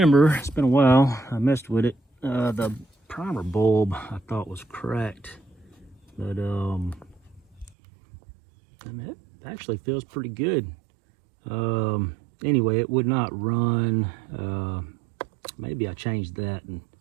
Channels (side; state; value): left; drops out; at 7.8 s